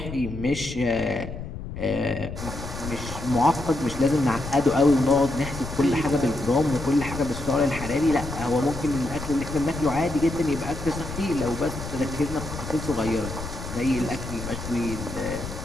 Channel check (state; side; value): noise; left; rumble, 9 dB below the sound